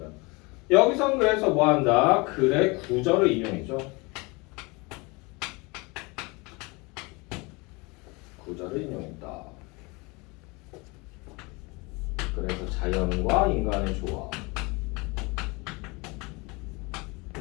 여기선 그래서 뭐 한다? 글의 구절을 인용했죠. 구절을 인용했다. 그래서 자연과 인간의 조화.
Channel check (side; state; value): right; quieter; 26.8 dB